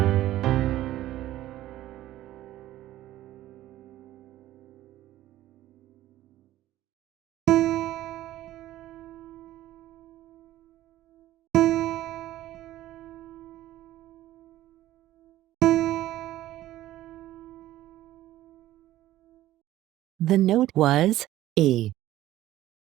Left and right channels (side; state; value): left; quieter; 14.6 dB